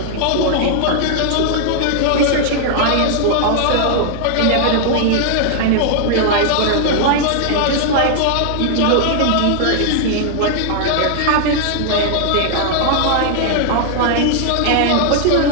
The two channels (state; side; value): different; both; correlation -0.01